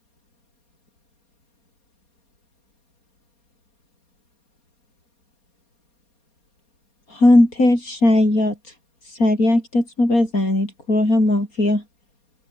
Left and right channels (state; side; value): late; right; 4.3 ms